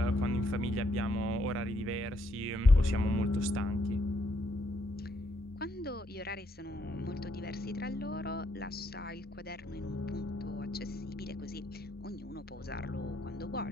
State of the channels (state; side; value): normal; both; correlation 0.74